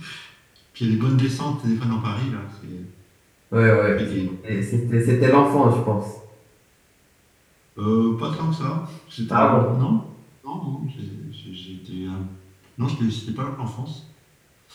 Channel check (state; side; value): identical; both; correlation 1.00